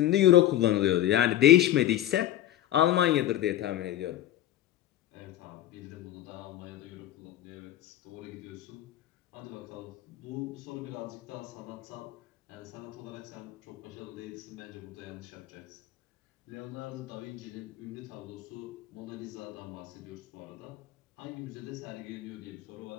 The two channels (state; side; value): quieter; right; 13.0 dB